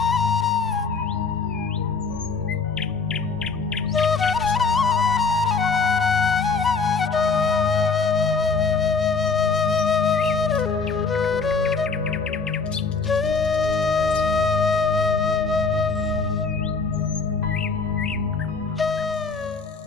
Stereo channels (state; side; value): quieter; right; 4.6 dB